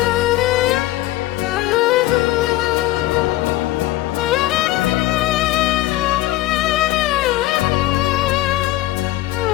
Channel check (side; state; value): right; quieter; 16.3 dB